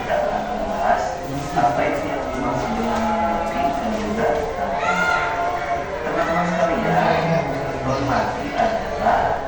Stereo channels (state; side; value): identical; both; correlation 1.00